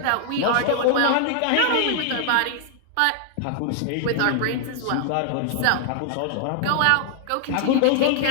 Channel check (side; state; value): both; different; correlation -0.01